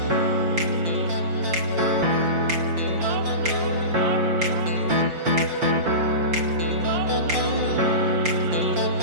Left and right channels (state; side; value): late; left; 5.6 ms